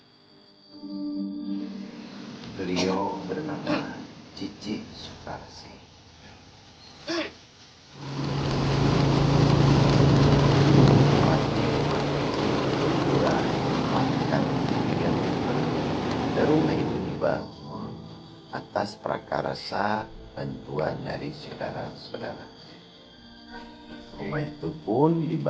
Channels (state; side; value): identical; both; correlation 1.00